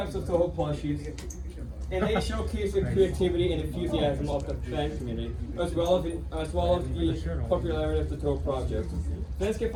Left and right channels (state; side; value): identical; both; correlation 1.00